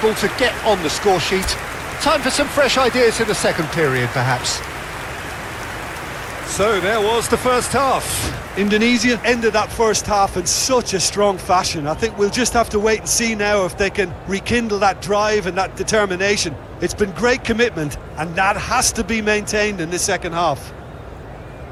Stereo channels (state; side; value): identical; both; correlation 1.00